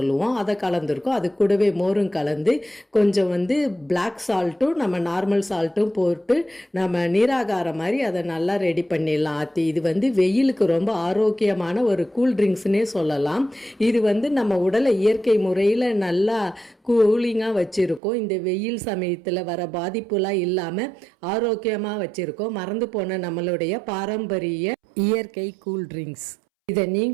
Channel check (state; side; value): drops out; left; at 18.0 s